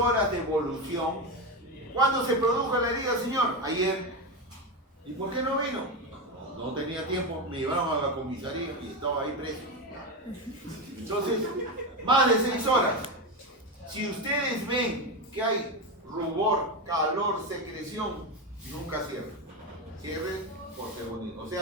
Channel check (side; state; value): both; normal; correlation 0.15